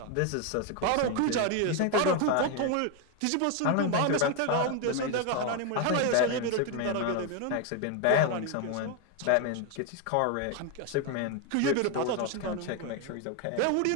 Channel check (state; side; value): different; both; correlation 0.01